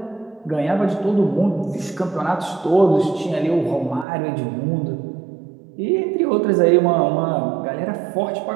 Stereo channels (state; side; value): drops out; left; at 4.0 s